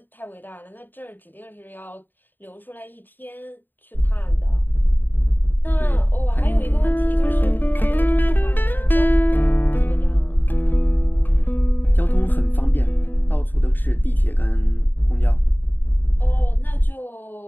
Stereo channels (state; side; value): late; right; 0.091 ms